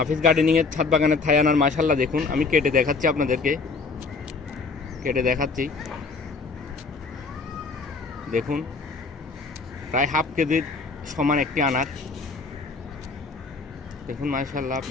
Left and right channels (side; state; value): right; quieter; 4.3 dB